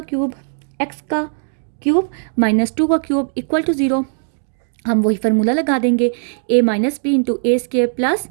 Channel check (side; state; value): left; silent; 67 dB below the other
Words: क्यूब, x का क्यूब -2 का क्यूब इक्वल टू 0। हम वही फार्मूला लगा देंगे, a - b into a square plus